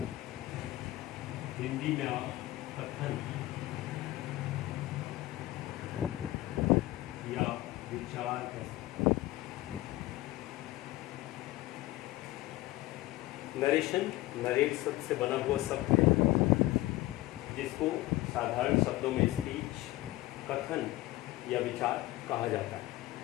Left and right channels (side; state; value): right; quieter; 17.4 dB